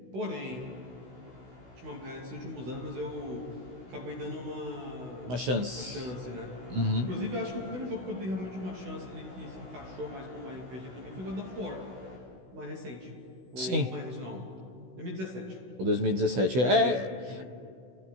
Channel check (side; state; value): left; late; 16 ms